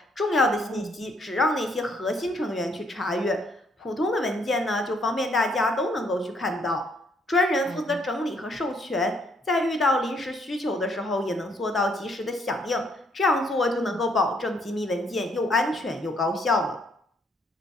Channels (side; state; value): both; normal; correlation 0.69